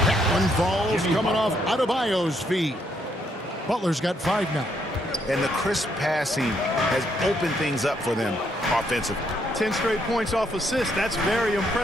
That one falls coming off Adebayo's feet. Butler's got 5 now. And the crisp passing has opened things up for them offensively. 10 straight points off assists. That's very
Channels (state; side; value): normal; both; correlation 0.73